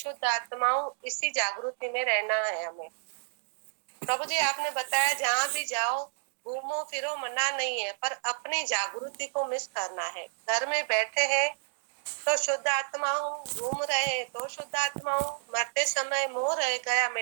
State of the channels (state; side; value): silent; left; digital silence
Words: आत्मा हूँ, इसी जागृति में रहना है हमें। प्रभु जी आपने बताया जहाँ भी जाओ घूमो फिरो मना नहीं है, पर अपनी जागृति को मिस करना है। घर में बैठे हैं तो शुद्ध आत्मा हूँ, घूम रहे हैं तो शुद्ध आत्मा हूँ, मरते समय मोह रह गया